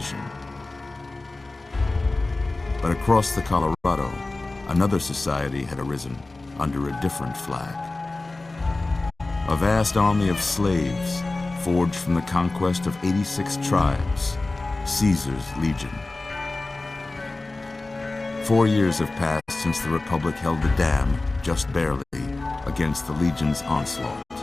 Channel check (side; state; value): right; quieter; 3.2 dB